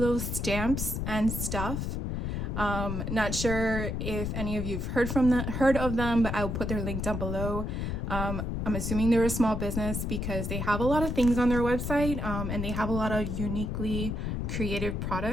Stamps and Stuff. Not sure if any of you've heard of them, but I'll put their link down below. I'm assuming they're a small business because they have a lot of things on their website, and they have a lot of uniquely creative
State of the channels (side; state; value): left; noise; rumble, 2 dB below the sound